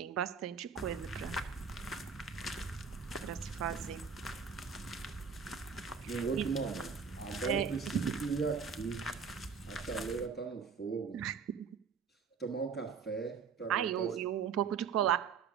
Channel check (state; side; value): quieter; left; 6.1 dB